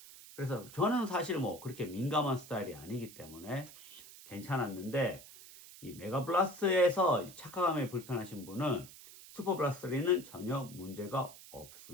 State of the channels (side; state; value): right; noise; hiss, 17 dB below the sound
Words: 그래서 저는 사실 뭐 그렇게 민감한 스타일이 아니기 때문에 괜찮았는데, 이 메가블라스트에서 착화감에 불편하신 분은 슈퍼블라스트 3는 전혀 문제가